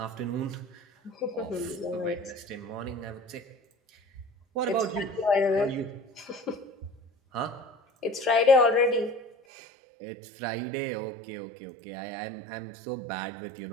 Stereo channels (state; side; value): drops out; left; at 9.3 s